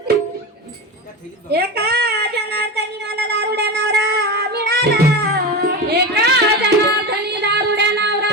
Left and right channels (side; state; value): both; normal; correlation 0.22